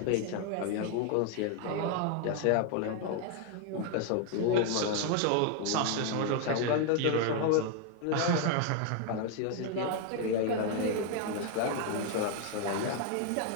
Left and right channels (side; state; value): both; different; correlation 0.01